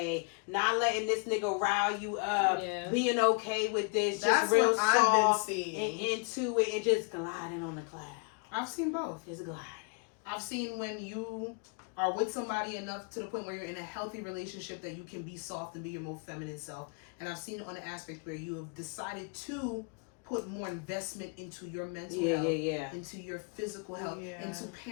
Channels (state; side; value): quieter; right; 37.0 dB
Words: not letting this nigga rile you up, Yeah. being okay with this, That's just real what I've been soft seeing. and into it and just gliding on the cloud. I've seen both. Just gliding. I've seen when you are with somebody enough to the point where you're in a healthy relationship that you can be soft and be your most feminine self. And I've seen it on the aspect where you have decided to put more investment into your mental health, into your physical health, Yeah. into